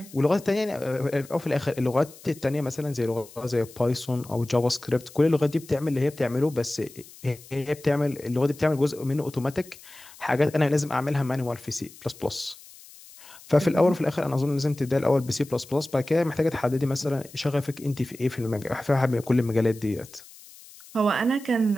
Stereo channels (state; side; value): noise; left; hiss, 21 dB below the sound